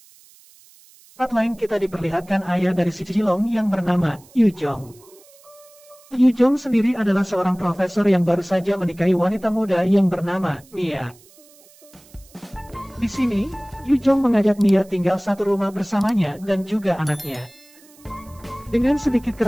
lain kita diperlihatkan ayah dari si Jilong yang bernama Yu Jong. Yu Jong sendiri adalah seorang profesor yang baru saja menikahi wanita muda yang bernama Mia. Di sini, Yu Jong mengajak Mia tinggal satu rumah bersamanya dan juga anaknya. Dengan sedikit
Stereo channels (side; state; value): right; noise; hiss, 26 dB below the sound